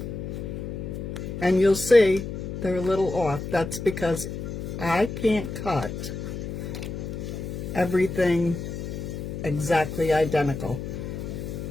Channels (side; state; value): left; noise; hum, 6 dB below the sound